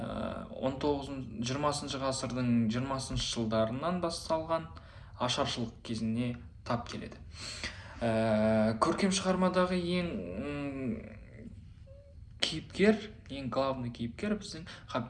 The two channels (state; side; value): identical; both; correlation 1.00